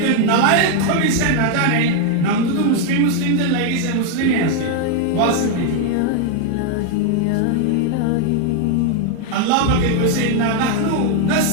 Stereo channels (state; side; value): different; both; correlation 0.00